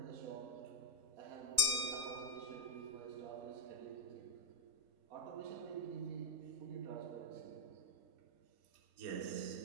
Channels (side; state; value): left; late; 3.2 ms